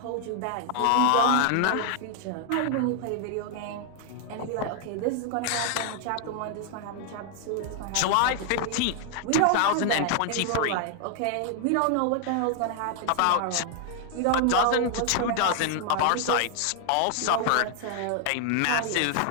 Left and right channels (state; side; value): different; both; correlation 0.00